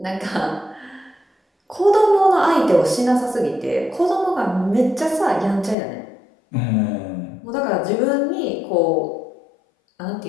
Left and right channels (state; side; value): drops out; right; at 5.8 s